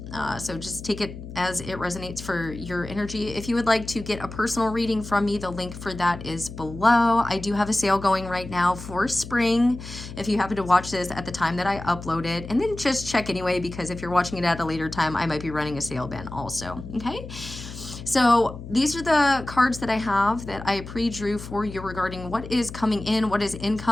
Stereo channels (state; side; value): noise; left; hum, 12 dB below the sound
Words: So just take it as it resonates for your energy. If you would like to get a personal reading from me, the link for that is below. I do have a sale going right now for spring. If you happen to watch this at the time that I upload it, and then just check anyway, because if you're watching it at a later time, I might be running a sale then also, okay? So these are the cards that I have that I pre-drew for you regarding what is coming in, what is